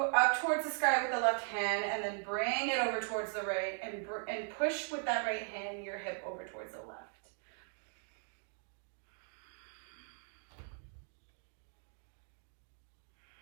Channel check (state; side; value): silent; left; 52 dB below the other